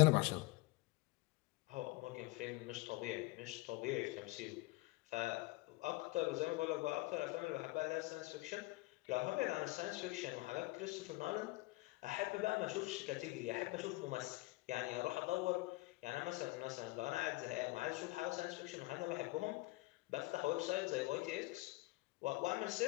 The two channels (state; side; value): quieter; right; 21.7 dB